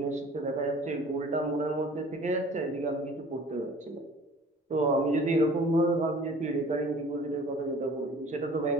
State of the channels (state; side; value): normal; both; correlation 0.48